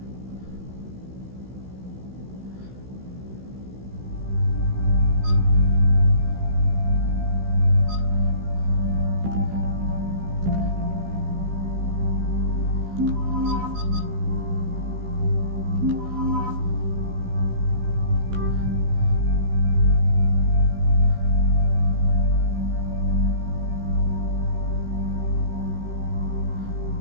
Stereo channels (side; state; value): left; late; 16 ms